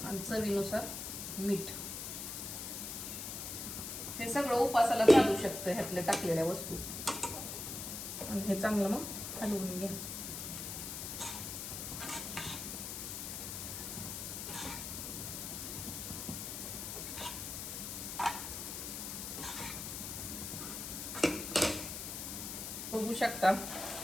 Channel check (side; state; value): left; noise; hiss, 6 dB below the sound